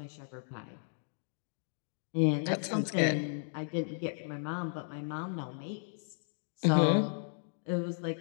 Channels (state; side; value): silent; right; digital silence